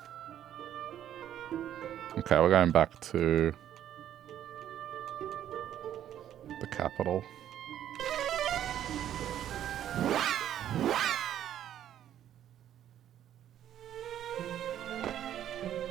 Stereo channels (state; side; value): quieter; left; 10.9 dB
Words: Okay, we're going back to the capital.